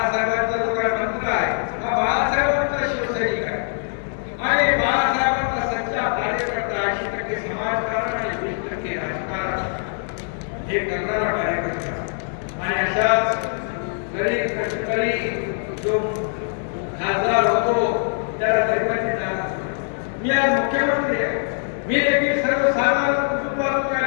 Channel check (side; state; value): right; silent; 64 dB below the other